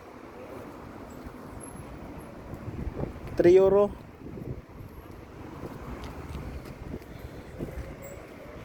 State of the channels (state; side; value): identical; both; correlation 1.00